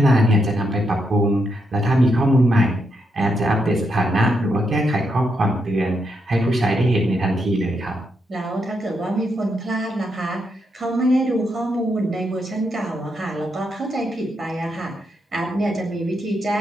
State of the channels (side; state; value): both; normal; correlation 0.81